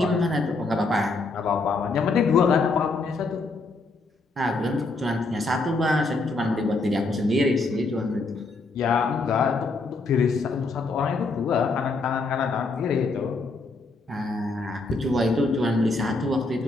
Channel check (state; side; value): quieter; right; 3.5 dB